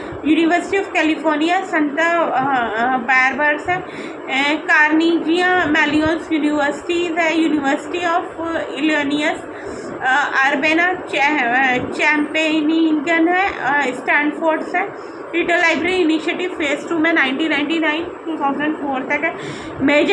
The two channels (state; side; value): identical; both; correlation 1.00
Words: university of California Santa barbers है, कार्नेगिया मेलियन यूनिवर्सिटीज़ है, यूनिवर्सिटी ऑफ इलिनॉइस अर्बना चैम्पेनिगन है, स्टैनफोर्ड है. डिजिटल लाइब्रेरी इनिशिएटिव फेज 2 में 1999-2004 तक है.